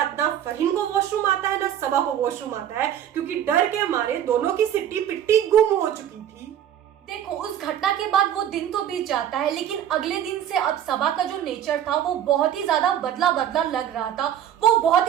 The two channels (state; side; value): quieter; left; 10.4 dB